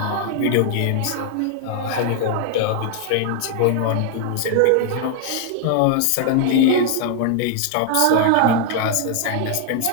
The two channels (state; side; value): different; both; correlation 0.00